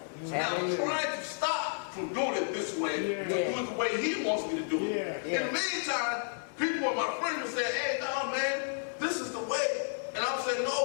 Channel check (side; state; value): right; silent; 57 dB below the other